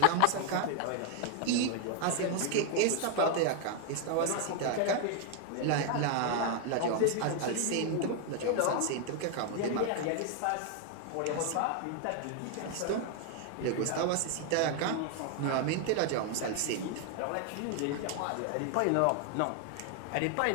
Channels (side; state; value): both; different; correlation 0.00